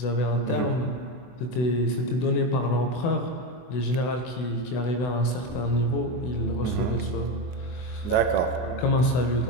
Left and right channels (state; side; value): late; right; 24 ms